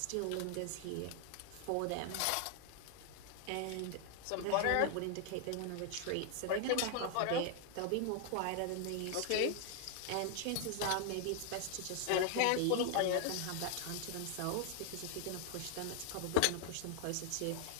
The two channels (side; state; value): both; different; correlation 0.00